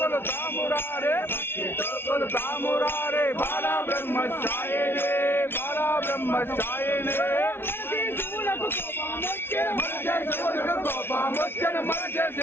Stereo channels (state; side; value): late; right; 0.11 ms